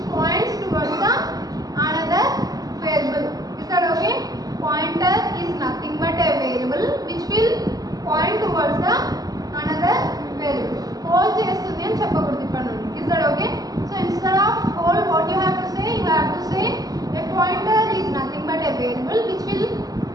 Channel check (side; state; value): left; late; 0.18 ms